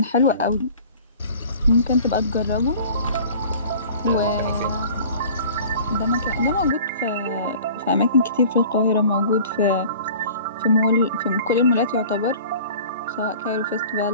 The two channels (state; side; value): inverted; both; correlation -0.45